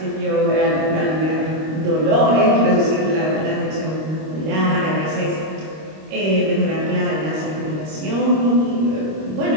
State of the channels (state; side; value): late; left; 26 ms